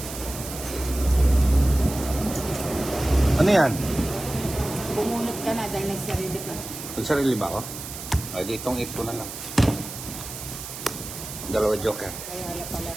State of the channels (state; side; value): noise; right; hiss, 10 dB below the sound